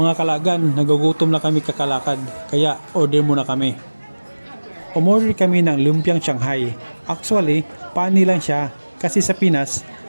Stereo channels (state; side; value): inverted; both; correlation -1.00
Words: kalagan, nagugutom na kami kakalakad, kaya order muna kami. Umorder kami ng lumpiang Shanghai. Actually, pani lang siya kasi sa Pinas,